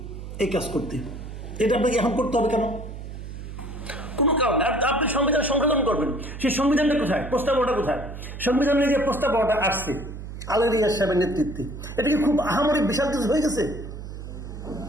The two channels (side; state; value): right; noise; hum, 10 dB below the sound